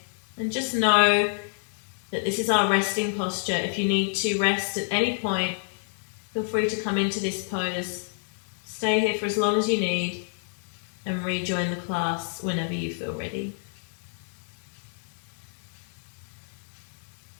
and just know that this is our resting posture. If you need to rest at any point, feel free to come into this pose, stay here for as long as you need, and rejoin the class whenever you feel ready.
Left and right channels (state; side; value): silent; right; digital silence